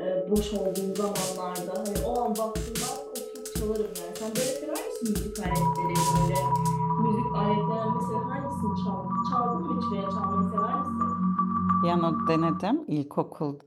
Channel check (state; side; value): identical; both; correlation 1.00